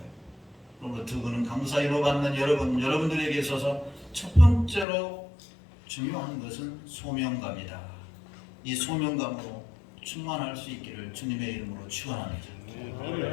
그러므로 두 분은 강사위로 받는 여러분들에게 있어서 첫 번째로 중요한 것은 소명감이다. 이 소명감으로 충만할 수 있기를 주님의 이름으로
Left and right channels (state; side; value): drops out; right; at 4.9 s